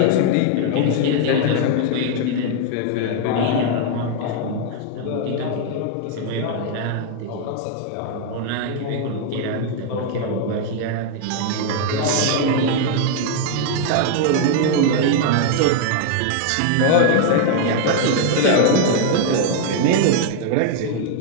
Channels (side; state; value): both; different; correlation 0.00